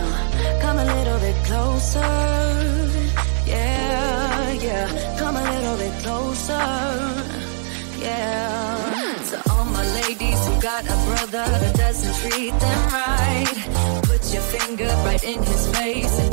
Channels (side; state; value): left; silent; digital silence